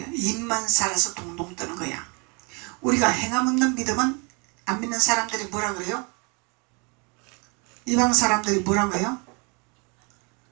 입만 살아서 동동 뜨는 거야. 우리가 행함 없는 믿음은 안 믿는 사람들이 뭐라 그래요? 이방 사람들이 뭐라고 해요?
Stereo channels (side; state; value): left; quieter; 31.7 dB